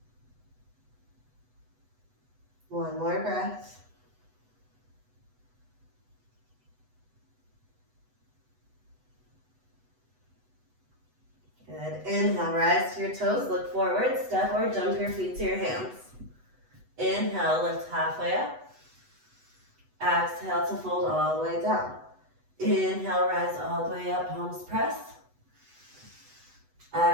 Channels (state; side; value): late; left; 8.0 ms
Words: One more breath. Good. Inhale, rise to your toes, look forward, step or jump your feet to your hands. Inhale, lift halfway up. Exhale to fold all the way down. Inhale, rise all the way up, palms press.